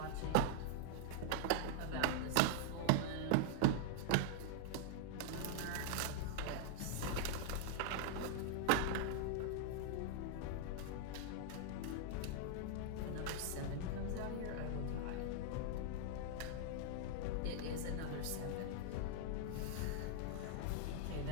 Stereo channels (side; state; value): both; different; correlation -0.01